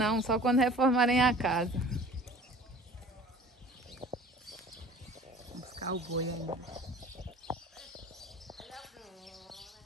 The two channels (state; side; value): normal; both; correlation 0.45